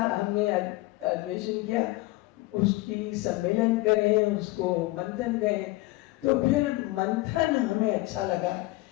अधिवेशन किया, उसकी सम्मेलन करें, उसको मंथन करें, तो फिर मंथन हमें अच्छा लगा,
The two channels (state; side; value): quieter; right; 20.6 dB